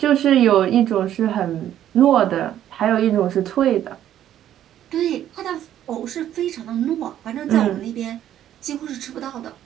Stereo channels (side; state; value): left; quieter; 11.4 dB